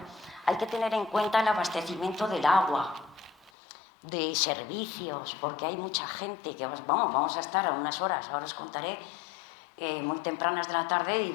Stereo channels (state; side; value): drops out; right; at 3.5 s